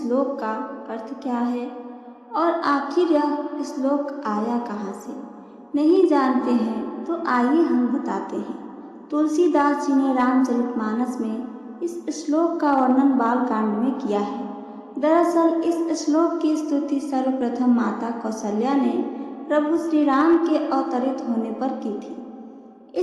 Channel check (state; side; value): identical; both; correlation 1.00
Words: का अर्थ क्या है और आखिर यह श्लोक आया कहाँ से? नहीं जानते हैं तो आइए हम बताते हैं। तुलसीदास जी ने रामचरितमानस में इस श्लोक का वर्णन बालकांड में किया है। दरअसल इस श्लोक की स्तुति सर्वप्रथम माता कौशल्या ने प्रभु श्री राम के अवतरित होने पर की थी।